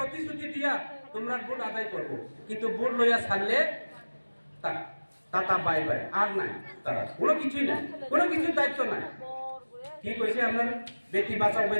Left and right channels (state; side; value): inverted; both; correlation -1.00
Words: দিয়া তোমরা ভোট আদায় করবো, কিন্তু ভোট লইয়া ছাড়লে তাতা বাই বাই আর নাই, তারা কোনো কিছুই নাই, কোনো কিছুর দায়িত্ব নাই। কি কইছে আপনার বেটি বাঁচাও